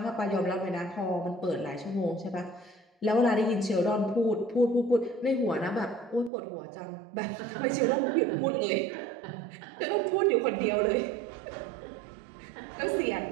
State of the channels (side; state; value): left; drops out; at 6.3 s